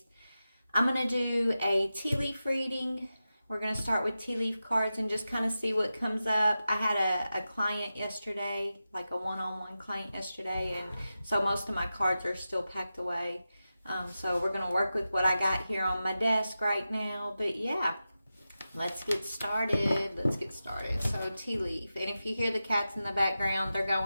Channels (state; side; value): inverted; both; correlation -0.92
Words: I'm gonna do a tea leaf reading. We're going to start with tea leaf cards and just kind of see what comes up. I had a client yesterday, like a one-on-one client yesterday, and so most of my cards are still packed away. So we're going to work with what I got here on my desk right now. But yeah, let's get started. So tea leaf. And if you hear the cats in the background, they're